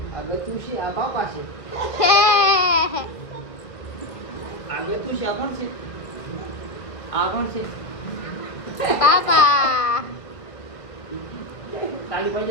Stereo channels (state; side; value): late; right; 1.8 ms